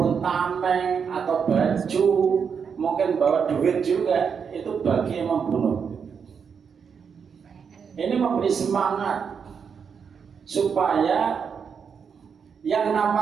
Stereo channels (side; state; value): left; quieter; 6.5 dB